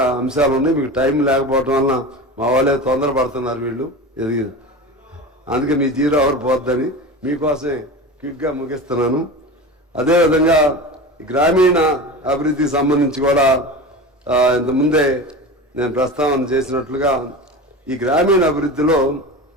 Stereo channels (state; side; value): normal; both; correlation 0.29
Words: అంశాలు ఉన్నాయి. మీకు టైం లేకపోవటం వలన మా వాళ్ళే తొందరపడుతున్నారు వీళ్ళు, అందుకే మీ 0 అవర్ పోద్దని మీకోసమే క్విక్గా ముగిస్తున్నాను. అదేవిధంగా గ్రామీణ అభివృద్ధికి సంబంధించి కూడా ఇంతకుముందే నేను ప్రస్తావన చేసినట్లుగా ఈ గ్రామీణ అభివృద్ధిలో